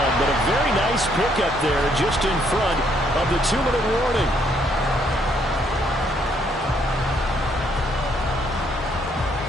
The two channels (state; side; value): normal; both; correlation 0.70